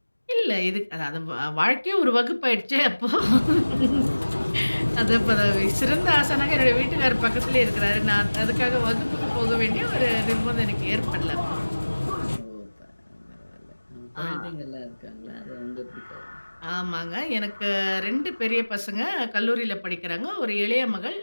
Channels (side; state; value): both; inverted; correlation -1.00